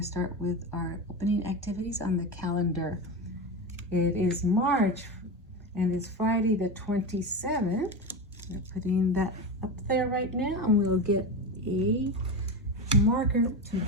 to start with our opening activities on the calendar. It is March, and it's Friday the 27th. We're putting that up there right now, and we'll get a marker to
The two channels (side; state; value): both; normal; correlation 0.20